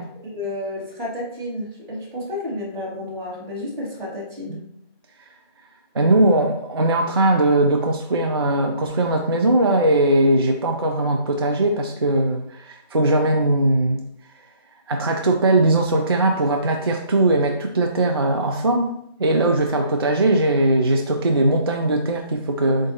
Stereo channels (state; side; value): inverted; both; correlation -0.59